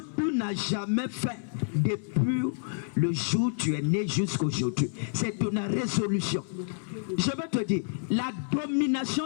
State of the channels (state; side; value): silent; right; 59 dB below the other